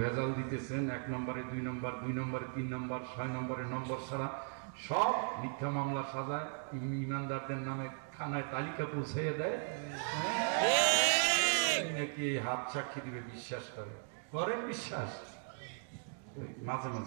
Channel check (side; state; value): left; silent; 53 dB below the other